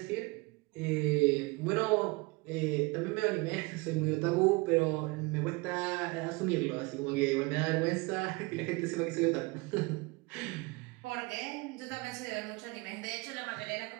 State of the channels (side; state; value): left; quieter; 25.2 dB